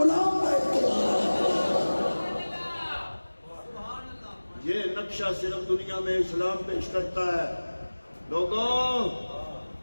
ہے۔ یہ نقشہ صرف دنیا میں اسلام پیش کرتا ہے۔ لوگوں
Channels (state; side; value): inverted; both; correlation -1.00